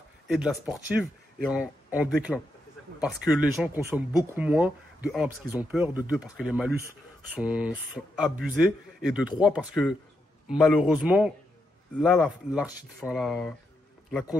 et de la sportive est en déclin. Parce que les gens consomment beaucoup moins. De 1, parce qu'ils ont peur. De 2, parce que les malus sont abusés. Et de 3, parce que malheureusement, là, la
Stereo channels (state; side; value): normal; both; correlation 0.82